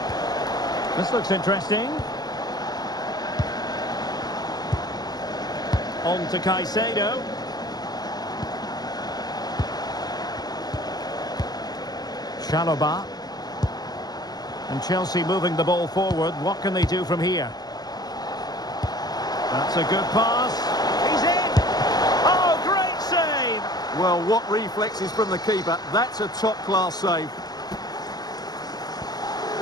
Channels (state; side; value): late; right; 0.19 ms